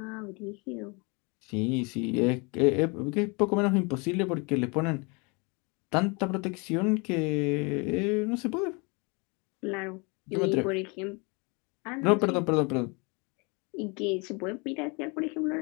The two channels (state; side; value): quieter; right; 30.4 dB